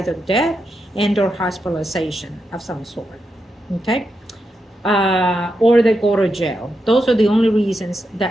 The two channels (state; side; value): normal; both; correlation 0.85